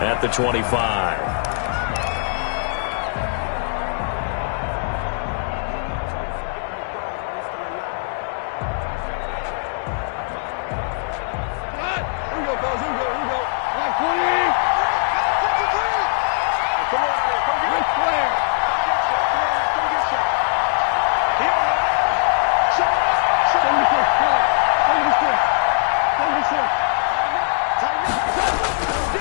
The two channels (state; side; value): silent; right; 65 dB below the other